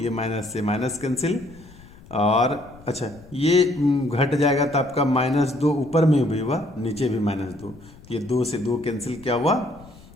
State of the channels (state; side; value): noise; left; rumble, 22 dB below the sound